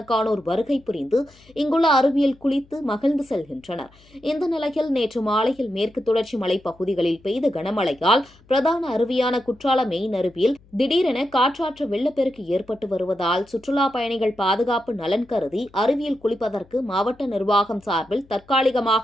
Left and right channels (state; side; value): noise; left; hum, 28 dB below the sound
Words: வருகை புரிந்து இங்குள்ள அருவியில் குளித்து மகிழ்ந்து செல்கின்றனர். இந்த நிலையில் நேற்று மாலையில் மேற்கு தொடர்ச்சி மலை பகுதிகளில் பெய்த கனமழையால் பிரதான அருவியான குற்றால மெயின் அருவியில் திடீரென காற்றாற்று வெள்ளப்பெருக்கு ஏற்பட்டு வருவதால் சுற்றுலா பயணிகள் பாதுகாப்பு நலன் கருதி அருவியில் குளிப்பதற்கு மாவட்ட நிர்வாகம் சார்பில்